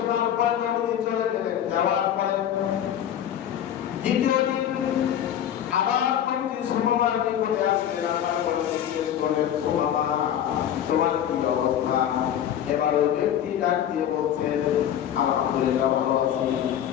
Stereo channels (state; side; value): quieter; right; 10.3 dB